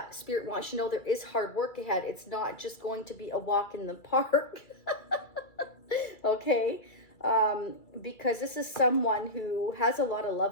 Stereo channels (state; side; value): late; right; 2.3 ms